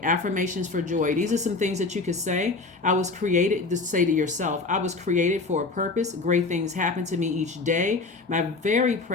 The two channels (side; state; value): right; quieter; 3.7 dB